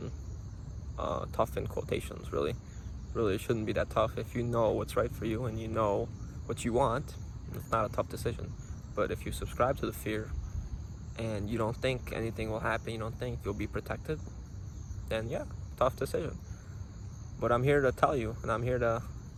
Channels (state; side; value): identical; both; correlation 1.00